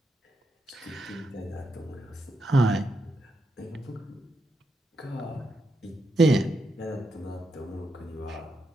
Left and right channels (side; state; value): both; normal; correlation 0.83